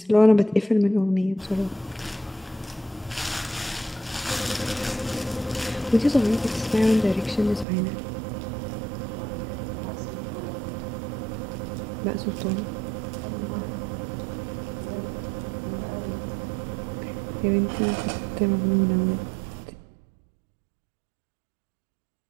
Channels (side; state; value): left; drops out; at 7.7 s